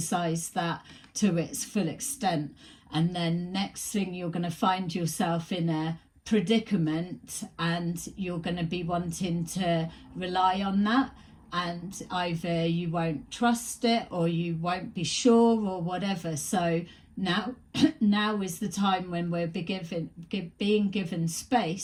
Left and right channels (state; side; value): identical; both; correlation 1.00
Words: that to its full extent. And then next thing, you're going to find yourself in a predicament and you're going to be wanting to rely on that, and either you won't trust it or you won't be sure or whatever. So now is the time when we're being given